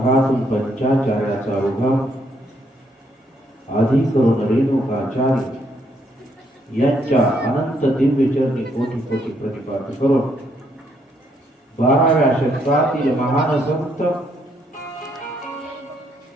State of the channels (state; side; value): normal; both; correlation 0.72